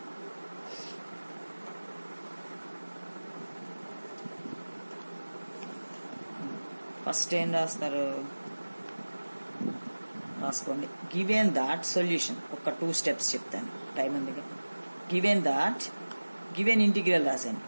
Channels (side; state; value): both; inverted; correlation -1.00